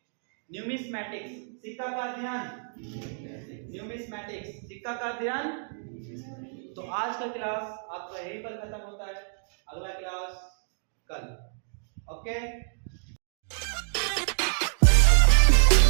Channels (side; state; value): left; silent; digital silence